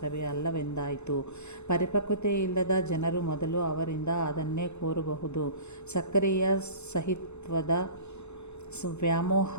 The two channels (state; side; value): late; right; 0.82 ms